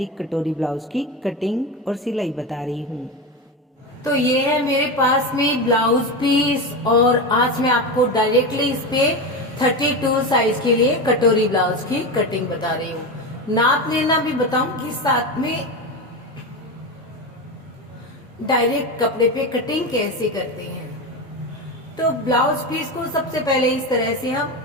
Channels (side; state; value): both; normal; correlation 0.19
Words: कटोरी ब्लाउज की कटिंग और सिलाई बता रही हूँ। तो ये है मेरे पास में ब्लाउज पीस और आज मैं आपको डायरेक्टली इस पे 32 साइज के लिए कटोरी ब्लाउज की कटिंग बता रही हूँ। नाप लेना भी बताऊंगी, साथ में डायरेक्ट कपड़े पे कटिंग कैसे करते हैं। तो ब्लाउज पीस को सबसे पहले इस तरह से हम